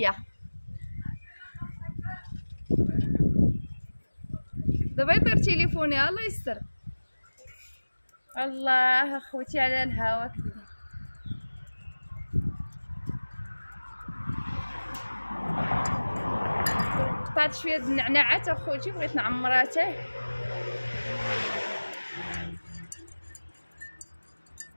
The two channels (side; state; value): both; inverted; correlation -1.00